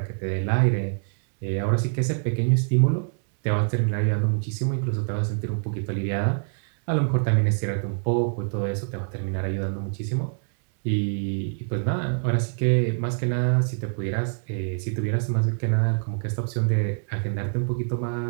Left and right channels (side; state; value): left; silent; 62 dB below the other